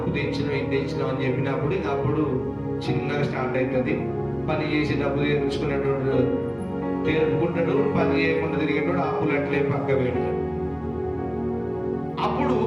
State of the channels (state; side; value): identical; both; correlation 1.00